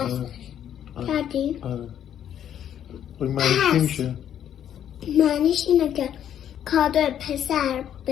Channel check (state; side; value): quieter; right; 10.0 dB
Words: کردی؟ آره. معنیش چی میشه؟ معنیش اینه که کادو پسر